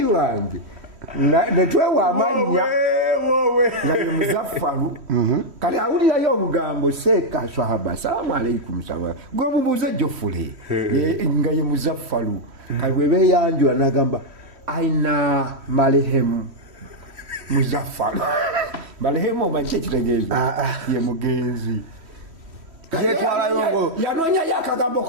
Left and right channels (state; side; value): late; left; 3.1 ms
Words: wange netwewa amanya nga ye Muzaffaru kati awulirayo obugambo seeka swahaba salaamu aleikum salaam gwe mubuuze Jofule nga ye Muzaffaru kati bwe beeyanjula n'agamba aina marehemu Muzaffar marehemu omanyi ekitegeeza ye mugenzi yetwala yongo yanoonya yakagambo